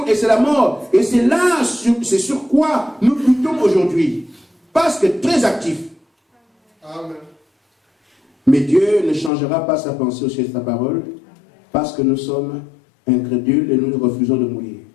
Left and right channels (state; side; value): drops out; right; at 9.3 s